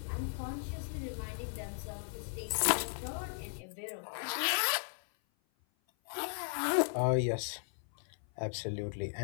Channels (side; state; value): right; silent; 53 dB below the other